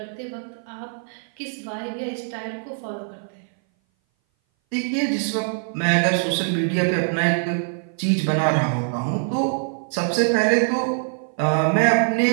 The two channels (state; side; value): silent; left; 59 dB below the other